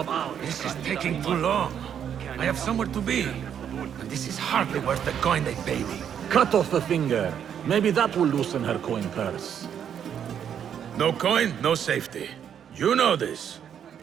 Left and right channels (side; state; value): left; quieter; 8.7 dB